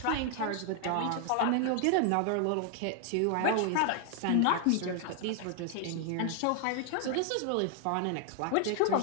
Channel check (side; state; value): both; different; correlation 0.00